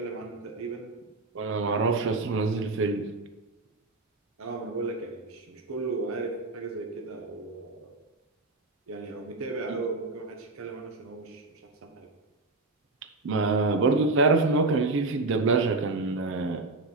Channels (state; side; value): quieter; left; 3.3 dB